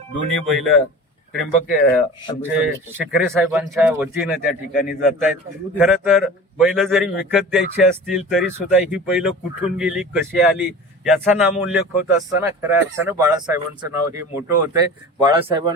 दोन्ही बैल आमचे शिकरे साहेबांच्या वतीनं त्या ठिकाणी जात आहेत. खरं तर बैल जरी विकत द्यायची असतील तरी सुद्धा ही बैल कुठून गेली, कशी आली याचा नामोल्लेख होत असताना खऱ्या अर्थानं बाळासाहेबांचं नाव हे मोठं होतंय.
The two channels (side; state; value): both; normal; correlation 0.37